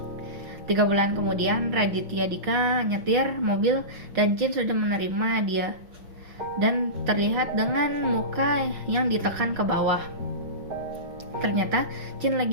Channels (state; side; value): late; left; 5.9 ms